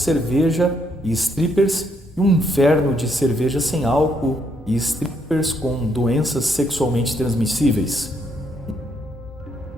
e strippers e um inferno de cerveja sem álcool e strippers com doenças sexualmente transmissíveis.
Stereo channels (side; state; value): both; normal; correlation 0.74